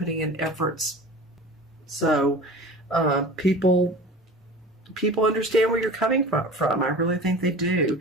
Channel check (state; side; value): normal; both; correlation 0.37